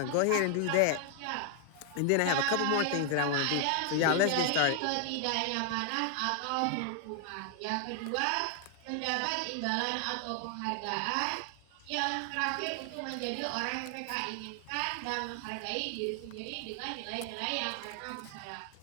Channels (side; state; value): both; different; correlation 0.00